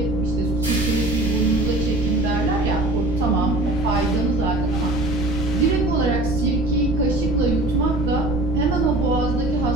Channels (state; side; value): noise; right; rumble, 7 dB below the sound